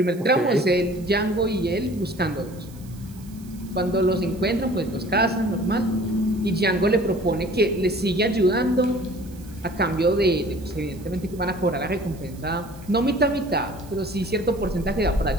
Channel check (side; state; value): right; noise; hiss, 24 dB below the sound